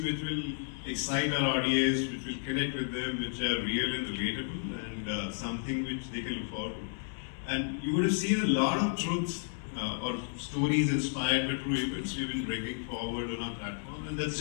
which will excite our audience, which will connect with them, which are real and relatable, and something which they can look forward to. And you would have seen a lot of truths or stories inspired by true events we've been bringing forward on our platform, and that's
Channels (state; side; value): silent; right; digital silence